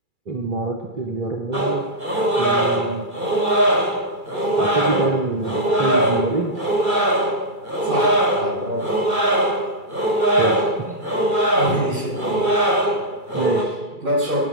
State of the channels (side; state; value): left; late; 2.3 ms